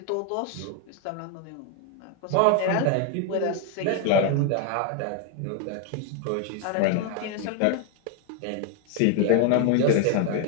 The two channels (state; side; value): different; both; correlation 0.01